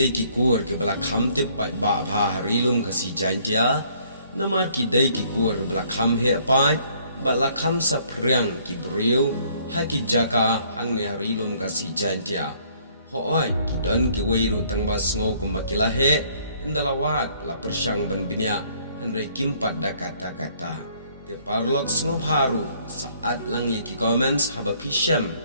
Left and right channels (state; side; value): inverted; both; correlation -0.63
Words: ki kur ke bala kham te pat ba bha harilum kasih jantia. Namar kidai ki kur bala kham he pat bala kham sa priang ki breu ha ki jaka hang ne harilum kasih jantia. Hoai ki don ki weiru tang ba sngau kumbakila he indalawat la persyang ban binya Henry kimpat da kata-kata. Te parlok sngau baru saat lang ye ki comments haba pisham